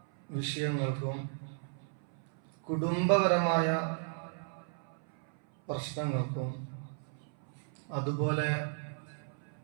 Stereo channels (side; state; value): left; silent; 55 dB below the other